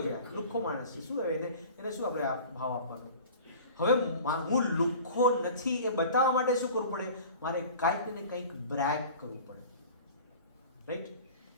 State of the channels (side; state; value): both; inverted; correlation -0.41